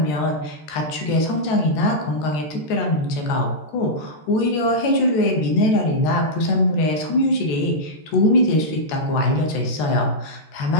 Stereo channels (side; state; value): right; late; 13 ms